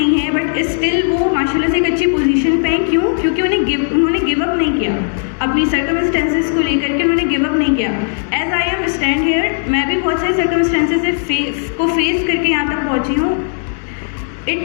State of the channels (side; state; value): right; silent; digital silence